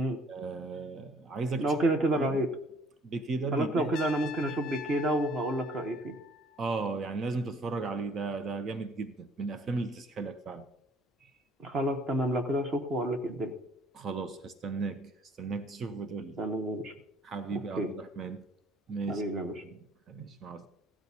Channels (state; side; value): normal; both; correlation 0.58